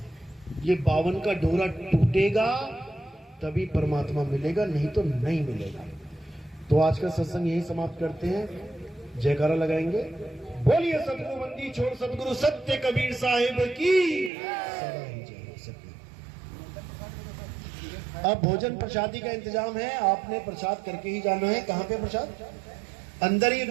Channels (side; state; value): left; drops out; at 14.3 s